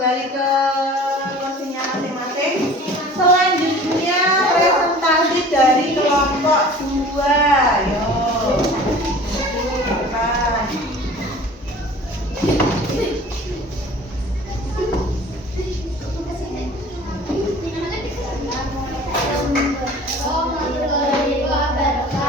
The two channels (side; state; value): both; normal; correlation 0.44